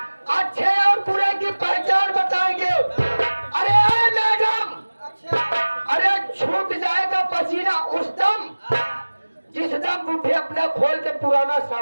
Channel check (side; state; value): both; inverted; correlation -1.00